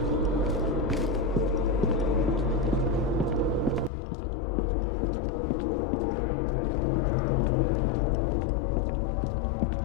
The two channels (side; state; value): right; drops out; at 3.9 s